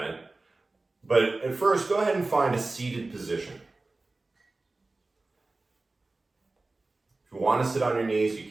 it. But at first, go ahead and find a seated position. If you want to sit on your knees, you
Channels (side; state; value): left; quieter; 3.2 dB